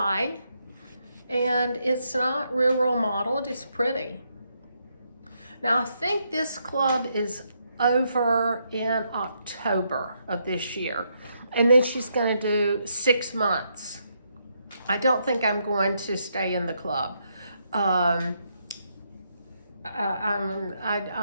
and it's not real modeled, it's pretty. Now I think this club is over in October of this year, and then she's going to do 6 months. I don't think I'm going to stay in the club. I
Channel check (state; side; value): inverted; both; correlation -0.78